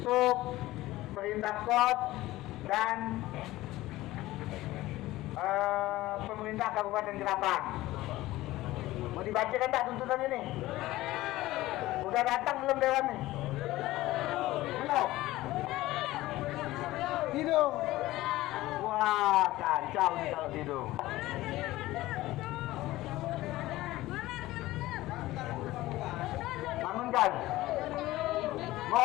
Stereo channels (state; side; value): quieter; right; 17.2 dB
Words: perintah kod dan pemerintah Kabupaten Ketapang. Mau dibacakan tak tuntutan ini? Udah datang belum dewan nih? Belum? Hidung. Wah, kacau nih kalau hidung. Bangunkan. Mau